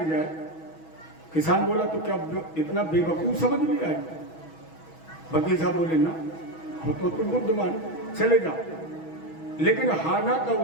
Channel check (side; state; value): right; late; 6.2 ms